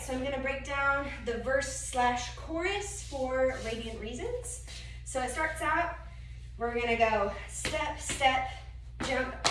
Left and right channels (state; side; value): identical; both; correlation 1.00